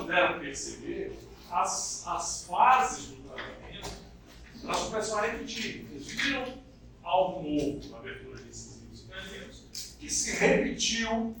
perceber, as fases do tratamento elas começam a repetir. Vocês viram algo novo na abertura desses incisivos e caninos, que se repetiu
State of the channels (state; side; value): identical; both; correlation 1.00